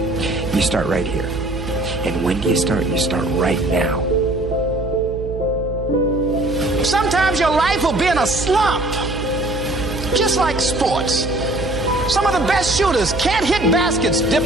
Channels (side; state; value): right; noise; hum, 8 dB below the sound